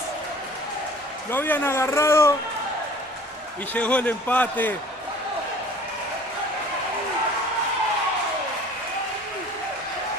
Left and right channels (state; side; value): normal; both; correlation 0.48